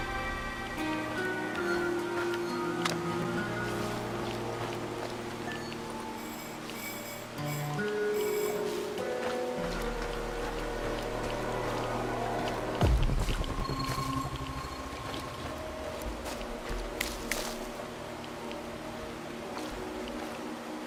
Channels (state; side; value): identical; both; correlation 1.00